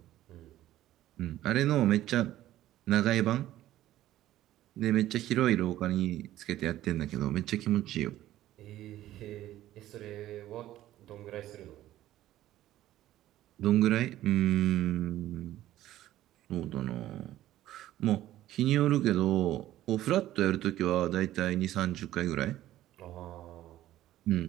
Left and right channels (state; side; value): quieter; left; 14.0 dB